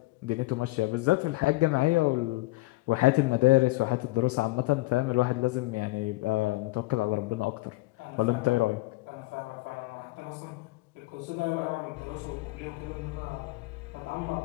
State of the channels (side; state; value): right; quieter; 21.0 dB